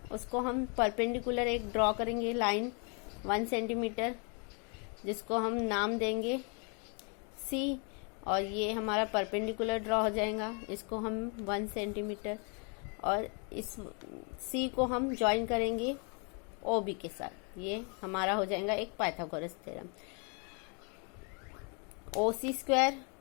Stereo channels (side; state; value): right; quieter; 36.9 dB